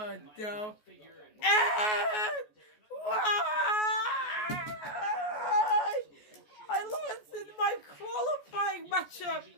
no. I lost in my qualifying matchup.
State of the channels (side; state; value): right; late; 14 ms